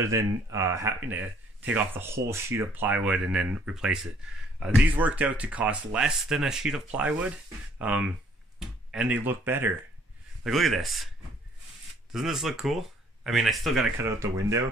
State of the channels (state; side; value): normal; both; correlation 0.62